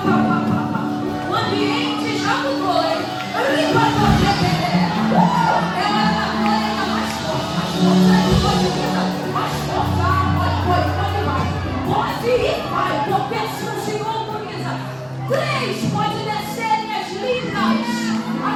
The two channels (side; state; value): both; identical; correlation 1.00